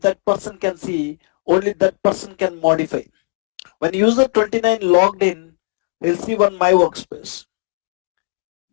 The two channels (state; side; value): quieter; right; 35.3 dB